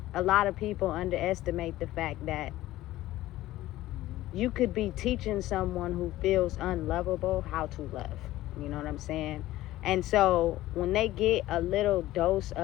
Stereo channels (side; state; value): right; quieter; 15.8 dB